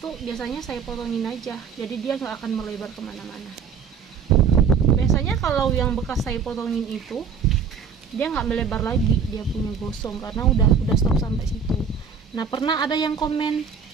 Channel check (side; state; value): left; quieter; 6.3 dB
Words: biasanya saya potongin aja. Jadi dia nggak akan melebar kemana-mana. Biasanya kalau yang bekas saya potongin itu, dia nggak melebar lagi, dia punya gosong karena udah stop sampai situ. Nah, pernah ada yang komen